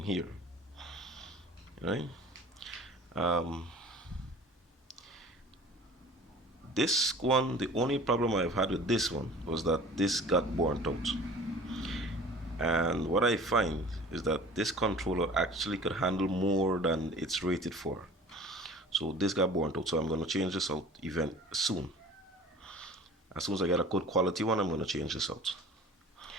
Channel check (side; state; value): both; normal; correlation 0.44